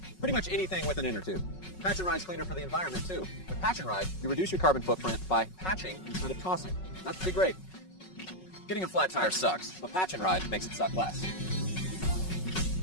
Pretty much anything with an inner tube. Patch and Ride's cleaner for the environment too. With Patch and Ride, you reduce your carbon footprint by patching instead of tossing. That's pretty great. Getting a flat tire sucks, but Patch and Ride makes it suck less.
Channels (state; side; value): late; right; 5.4 ms